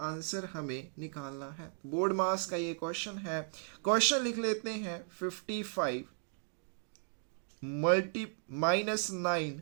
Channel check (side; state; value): left; silent; 54 dB below the other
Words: हमें निकालना है। बोर्ड मास का ये क्वेश्चन है। क्वेश्चन लिख लेते हैं, 55 -9